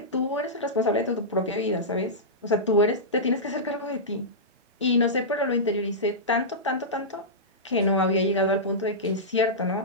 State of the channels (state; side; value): normal; both; correlation -0.14